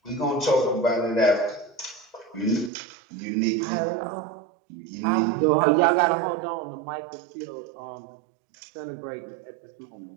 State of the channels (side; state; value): left; drops out; at 2.7 s